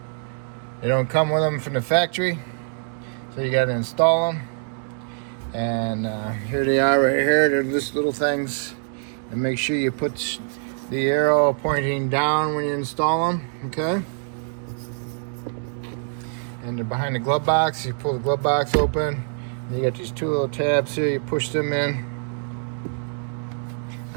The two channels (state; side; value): silent; left; 62 dB below the other